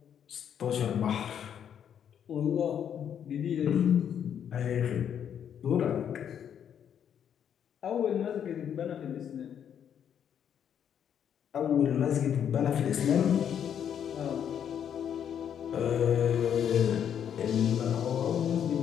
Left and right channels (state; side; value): quieter; right; 8.8 dB